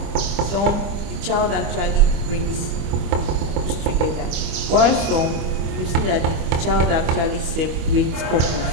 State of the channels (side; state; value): left; late; 25 ms